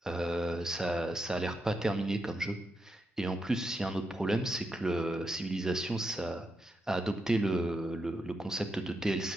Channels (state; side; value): normal; both; correlation 0.84